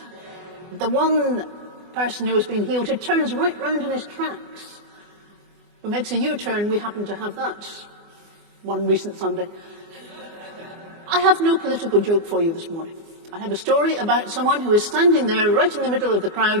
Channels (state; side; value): late; left; 24 ms